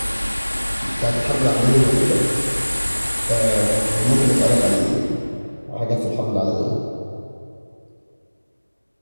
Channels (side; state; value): both; inverted; correlation -1.00